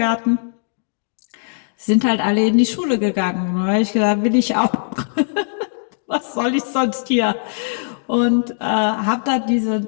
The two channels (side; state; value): right; silent; digital silence